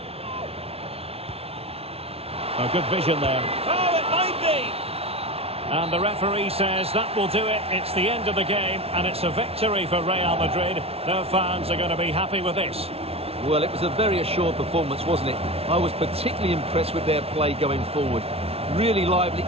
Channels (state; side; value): late; left; 0.29 ms